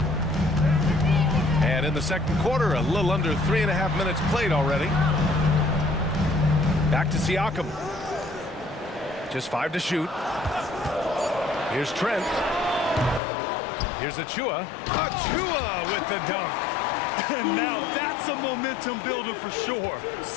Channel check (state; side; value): drops out; right; at 13.2 s